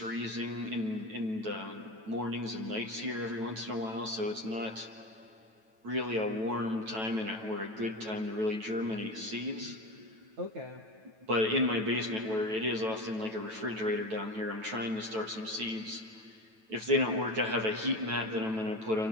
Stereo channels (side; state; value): left; late; 9.1 ms